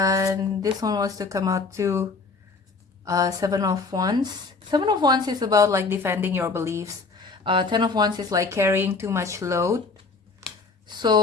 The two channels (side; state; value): right; quieter; 4.1 dB